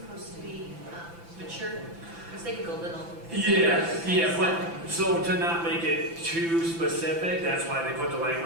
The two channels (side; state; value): left; late; 5.9 ms